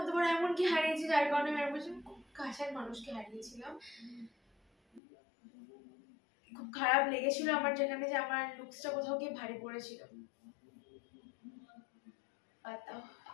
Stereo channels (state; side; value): drops out; right; at 5.0 s